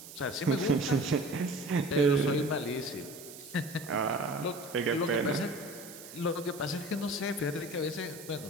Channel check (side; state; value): right; noise; hiss, 15 dB below the sound